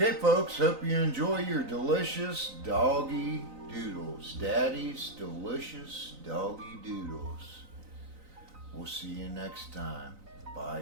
folks, hope you enjoy your delicious Doggy Doodles. Daddy's delicious Doggy Doodles. We'll see you next time. Bye,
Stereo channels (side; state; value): left; late; 3.9 ms